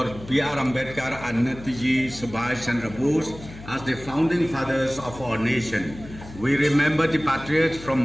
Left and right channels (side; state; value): left; noise; hum, 16 dB below the sound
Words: B.R. Ambedkar and Netaji Subhash Chandra Bose as the founding fathers of our nation. We remember the patriots